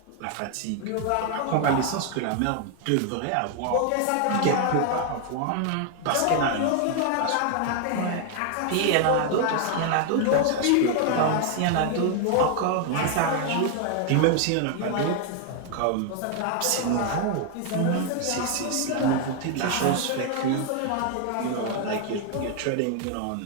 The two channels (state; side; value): different; both; correlation 0.00